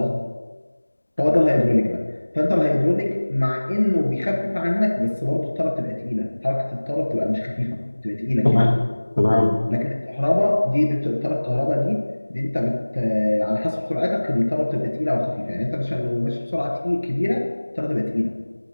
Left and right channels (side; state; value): both; inverted; correlation -1.00